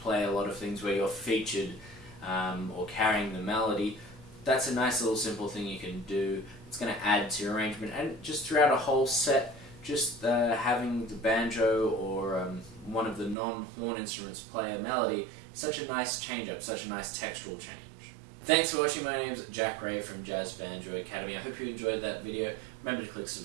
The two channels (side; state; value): left; drops out; at 13.4 s